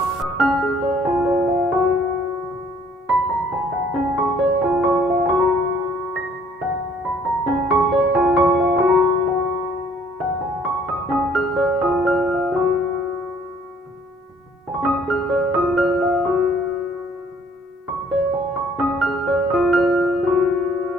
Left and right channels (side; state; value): both; normal; correlation 0.60